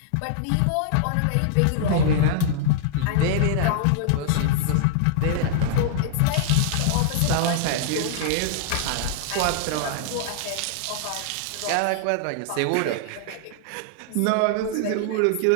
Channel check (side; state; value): both; different; correlation -0.01